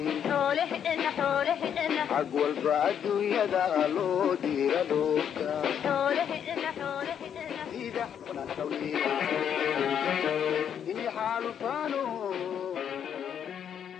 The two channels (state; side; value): quieter; right; 8.6 dB